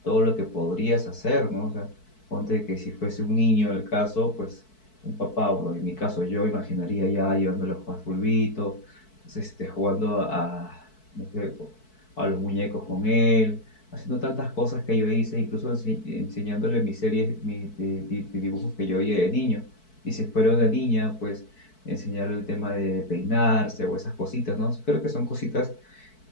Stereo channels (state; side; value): late; right; 4.6 ms